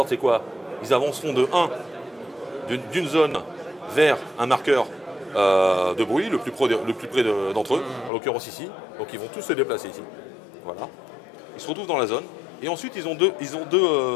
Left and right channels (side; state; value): right; drops out; at 8.1 s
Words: c'est quoi? Ils avanceront de 1 d'une zone vers un marqueur de bruit le plus près d'entre eux, en l'occurrence ici. Donc ils vont tous se déplacer ici. Voilà. Ils se retrouvent dans la zone, et ensuite ils ont deux